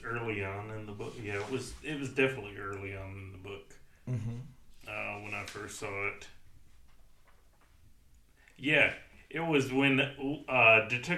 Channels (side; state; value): both; identical; correlation 1.00